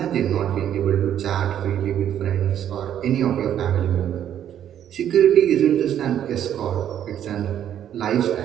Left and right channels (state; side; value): quieter; left; 10.3 dB